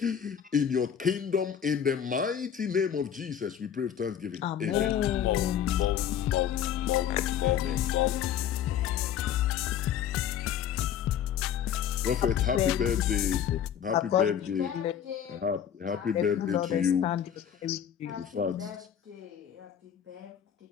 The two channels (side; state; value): right; quieter; 9.2 dB